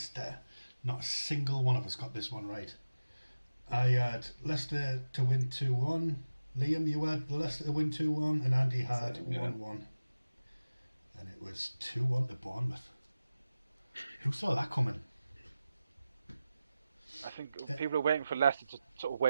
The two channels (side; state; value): both; inverted; correlation -0.95